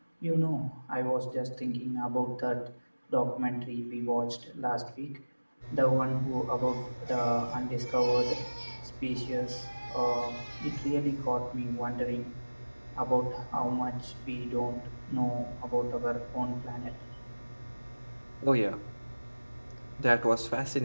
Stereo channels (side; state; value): both; inverted; correlation -1.00